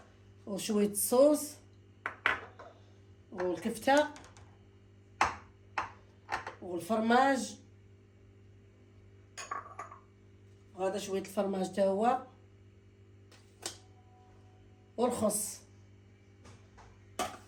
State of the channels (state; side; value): identical; both; correlation 1.00